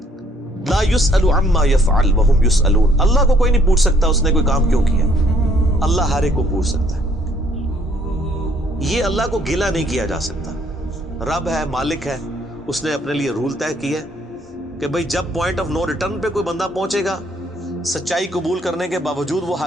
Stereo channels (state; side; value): normal; both; correlation 0.65